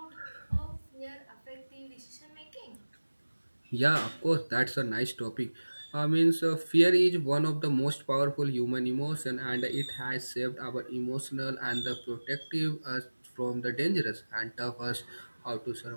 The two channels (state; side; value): inverted; both; correlation -1.00